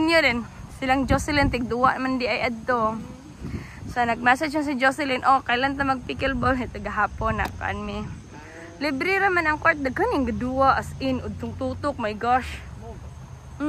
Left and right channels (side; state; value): both; identical; correlation 1.00